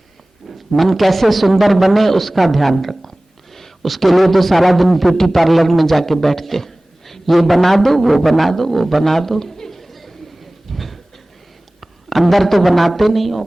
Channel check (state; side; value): normal; both; correlation 0.98